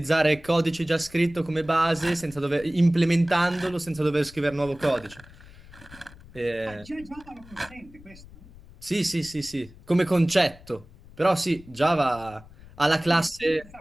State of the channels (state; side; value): noise; left; rumble, 21 dB below the sound